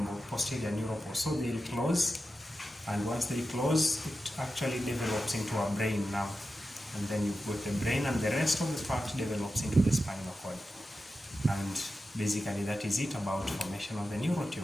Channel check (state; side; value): normal; both; correlation 0.91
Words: posterior neural cord. So they'll close, and once they close, it actually develops into a brain now, and then you've got the brain, and the rest of the part develops into the spinal cord. And basically that is it about formation of the neural